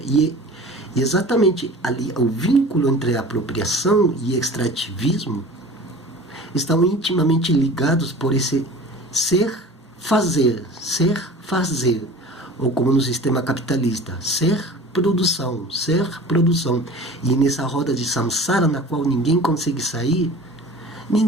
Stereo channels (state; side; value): normal; both; correlation 0.40